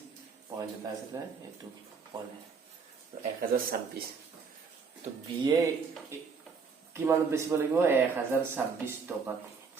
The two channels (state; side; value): quieter; left; 5.3 dB